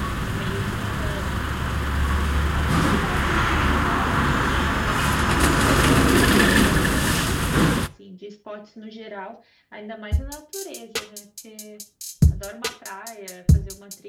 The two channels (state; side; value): identical; both; correlation 1.00